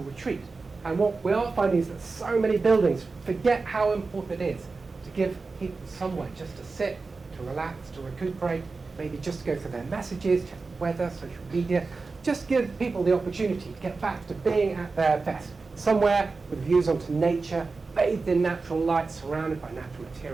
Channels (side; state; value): left; quieter; 4.1 dB